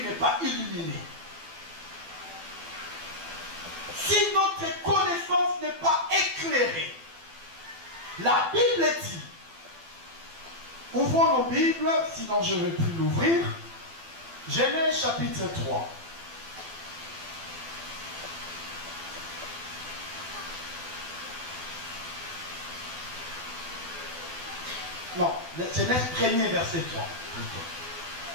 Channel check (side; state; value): left; late; 12 ms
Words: pas illuminé. Si notre connaissance n'est pas éclairée. La Bible dit, ouvrons nos Bibles, sinon je ne vais plus l'ouvrir, Genèse chapitre 3. Non, Genèse 1er verset 3.